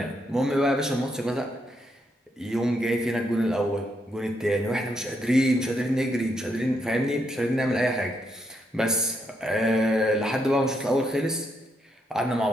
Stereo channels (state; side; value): normal; both; correlation 0.78